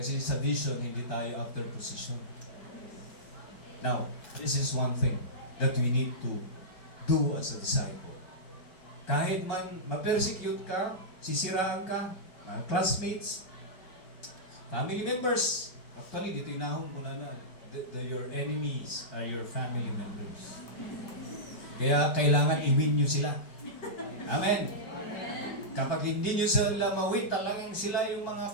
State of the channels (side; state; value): right; late; 5.4 ms